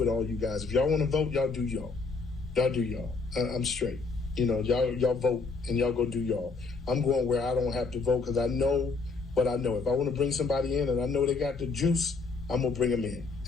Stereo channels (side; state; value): right; quieter; 4.2 dB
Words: all you guys. If y'all want to vote, y'all do y'all. Y'all do y'all. I'm straight. You know, y'all vote and y'all go do y'all. I'm going where I don't have to vote, because I know what I know. If I want to bring somebody in and I know they got the juice, I'm gonna bring them in.